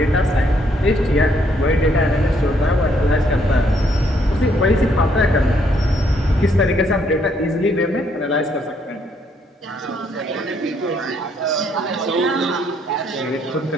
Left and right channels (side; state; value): both; normal; correlation 0.70